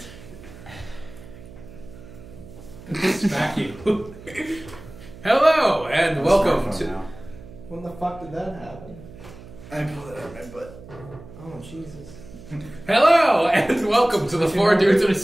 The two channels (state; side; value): noise; right; hum, 17 dB below the sound